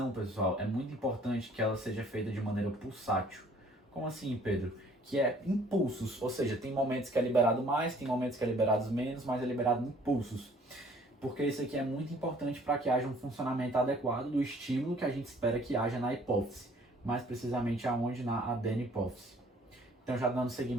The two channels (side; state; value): both; normal; correlation 0.57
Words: pessoal, é muito importante que ela seja feita de maneira pulsátil. Como assim, Pedro? Que é impulsos, ou seja, tem momentos que é liberado mais, tem momentos que é liberado menos, mas é liberado impulsos. Porque isso aqui é muito importante para que haja um funcionamento adequado do estímulo que a gente espera que haja na hipófise, mais precisamente aonde? Na adenipófise. Então, já dando